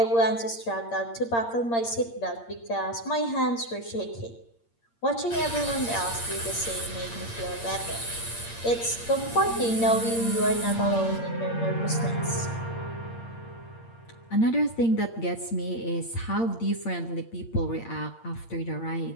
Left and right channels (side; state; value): right; late; 8.7 ms